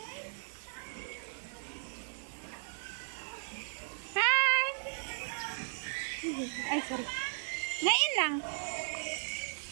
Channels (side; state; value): left; silent; digital silence